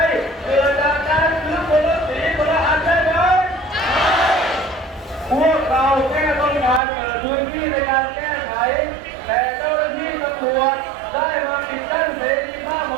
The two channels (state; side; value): drops out; left; at 6.8 s